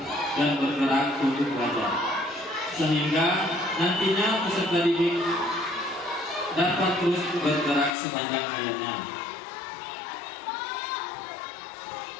untuk belajar, sehingga nantinya peserta didik dapat terus bergerak sepanjang hayatnya.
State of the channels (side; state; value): right; drops out; at 8.0 s